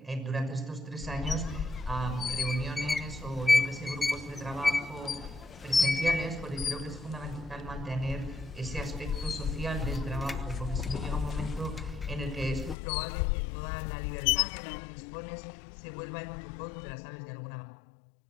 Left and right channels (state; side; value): drops out; right; at 12.8 s